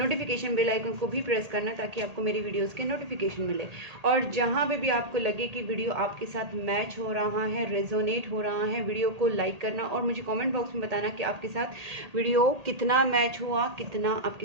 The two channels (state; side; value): late; left; 1.8 ms